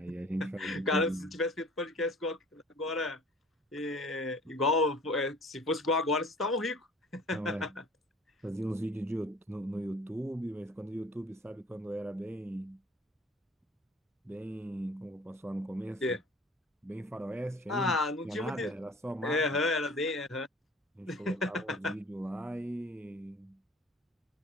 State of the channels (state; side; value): normal; both; correlation 0.49